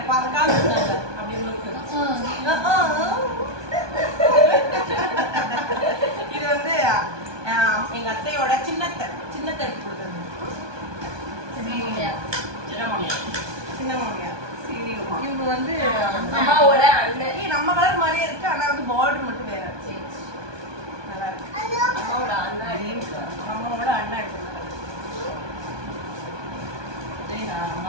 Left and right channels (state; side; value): late; left; 1.2 ms